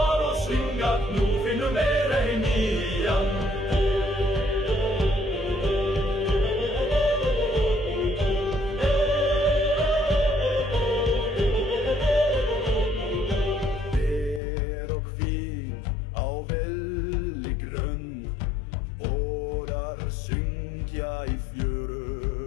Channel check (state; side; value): drops out; right; at 14.4 s